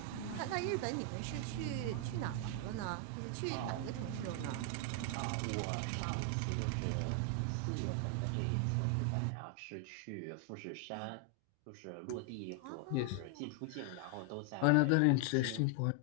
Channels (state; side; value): different; both; correlation 0.00